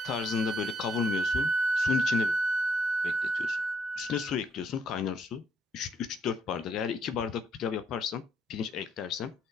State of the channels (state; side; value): normal; both; correlation 0.72